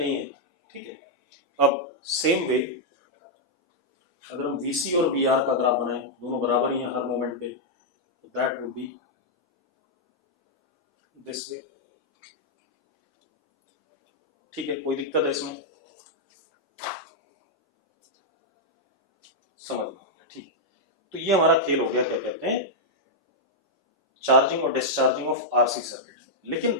है, ठीक है। अब सेम वे अगर हम VC और VR का ग्राफ बनाएं, दोनों बराबर ही हैं हर मोमेंट पे, तो that would be this way, ठीक है। कोई दिक्कत है इसमें? समझ में, ठीक। तो ये हमारा खेल हो गया, क्या कहते हैं, चार्जिंग और डिस्चार्जिंग ऑफ RC सर्किट।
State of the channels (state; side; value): normal; both; correlation -0.06